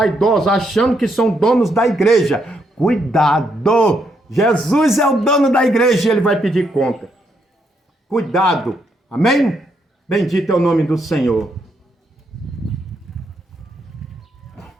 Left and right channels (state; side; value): normal; both; correlation 0.77